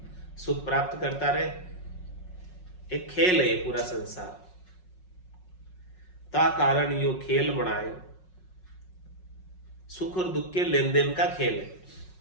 सुख प्राप्त करता रहे। एक खेल है ये पूरा संसार। ता कारण यो खेल बनाए, सुख और दुख के लेन देन का खेल है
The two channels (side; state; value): right; late; 5.4 ms